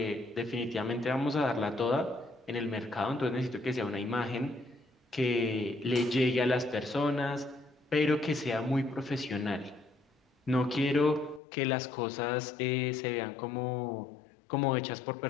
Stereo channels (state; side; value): drops out; right; at 11.4 s